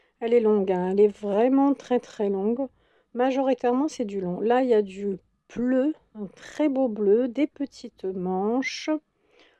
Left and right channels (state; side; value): identical; both; correlation 1.00